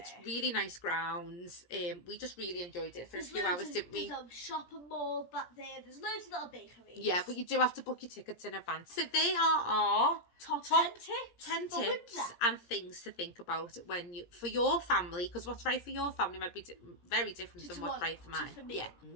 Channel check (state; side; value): late; right; 17 ms